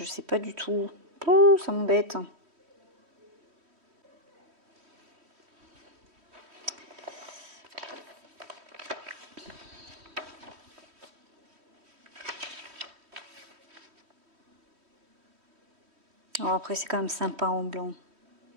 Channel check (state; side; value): late; left; 3.1 ms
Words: sais pas du tout. Oh, ça m'embête. Alors après, c'est quand même sympa en blanc.